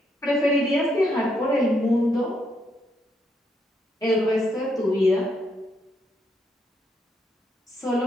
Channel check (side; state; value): both; normal; correlation 0.76